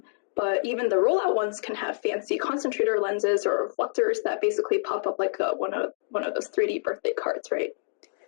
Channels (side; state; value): right; silent; digital silence